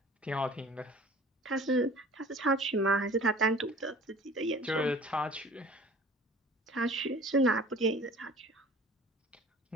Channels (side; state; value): both; normal; correlation 0.46